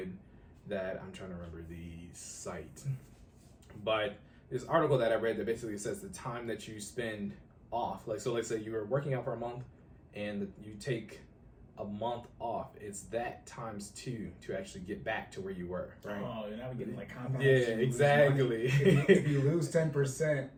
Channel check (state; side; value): identical; both; correlation 1.00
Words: that I'm trying to remember the site, but this article that I read that basically says the time that you spend off, so let's say you were working out for a month and you take a month off, it's that times 2 to actually get back to where you were, right? Oh, you're not getting like compound. Yeah, exactly. If you lose 10%,